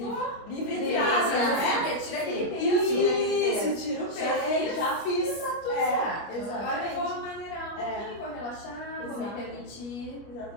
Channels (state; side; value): late; right; 25 ms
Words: Livre entre aspas, né? Tira aquele peso. Isso, tira o peso. Já fiz. Exatamente. Agora eu exatamente. vou maneirar um pouquinho, vou relaxar, vou me permitir.